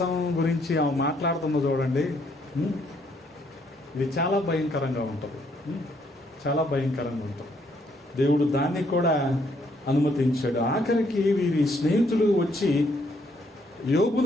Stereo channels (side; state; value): both; normal; correlation 0.70